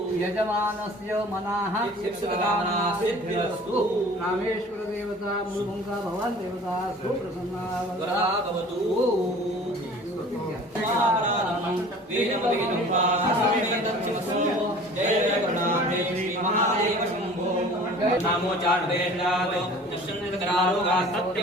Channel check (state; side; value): normal; both; correlation 0.45